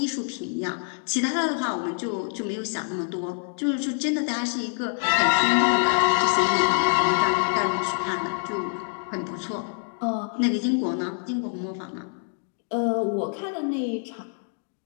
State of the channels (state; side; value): silent; right; 61 dB below the other